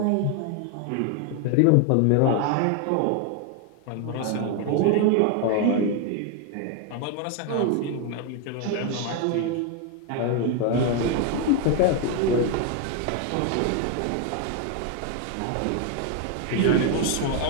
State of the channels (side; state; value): both; different; correlation 0.01